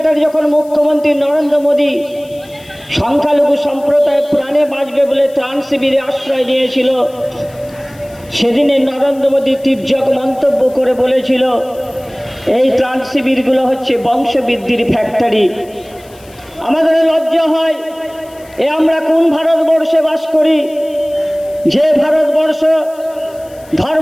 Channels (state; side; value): noise; left; hiss, 26 dB below the sound